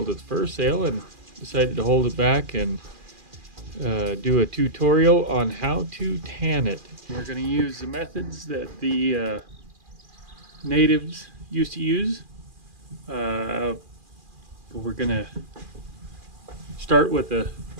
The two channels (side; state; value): left; late; 2.4 ms